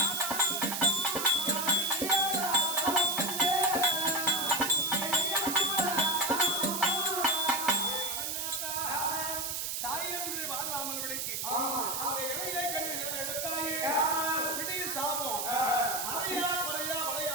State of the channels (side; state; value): right; noise; hiss, 2 dB below the sound